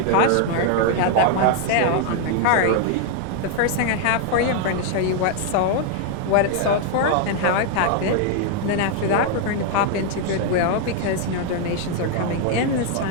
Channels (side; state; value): both; different; correlation 0.00